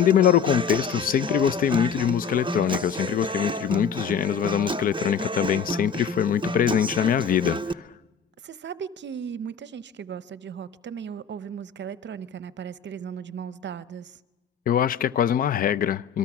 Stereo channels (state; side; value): quieter; right; 6.7 dB